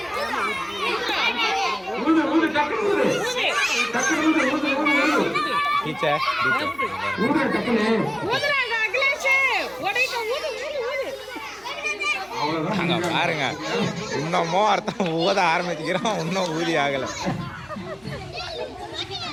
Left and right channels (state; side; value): noise; left; hum, 29 dB below the sound